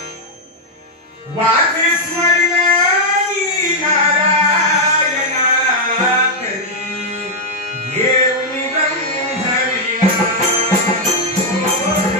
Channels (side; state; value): both; normal; correlation -0.02